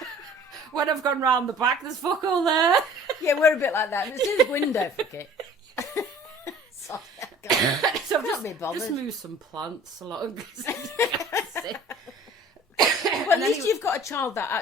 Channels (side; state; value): both; normal; correlation 0.48